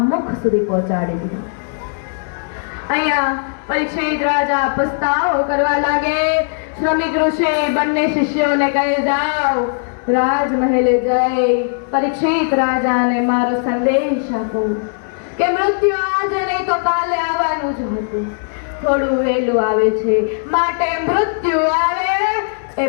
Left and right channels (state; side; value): silent; right; 68 dB below the other